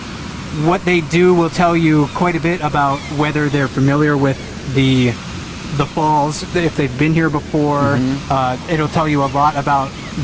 what they do will tell you quite a bit about whether they're familiar with the falls, if they've been here before. It'll tell you a lot about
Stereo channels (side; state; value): both; identical; correlation 1.00